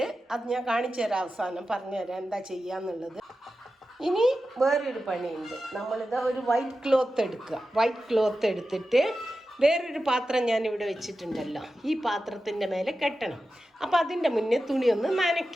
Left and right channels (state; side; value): normal; both; correlation 0.92